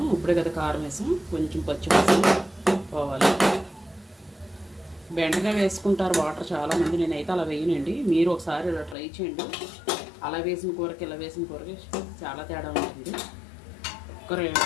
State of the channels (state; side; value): drops out; right; at 9.0 s